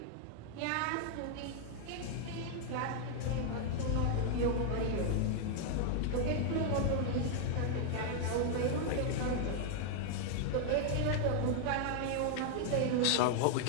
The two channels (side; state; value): both; different; correlation 0.00